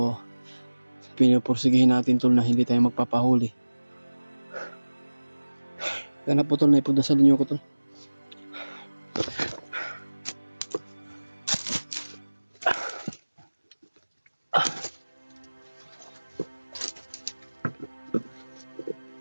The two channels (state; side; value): inverted; both; correlation -1.00